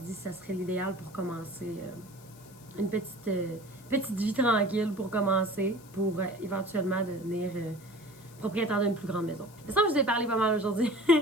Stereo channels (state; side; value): noise; left; hiss, 23 dB below the sound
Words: dit que ça serait l'idéal pour commencer une petite vie tranquille pour commencer, pour éventuellement devenir... propriétaire d'une plus grande maison. C'est ça que je vous ai parlé pas mal aujourd'hui.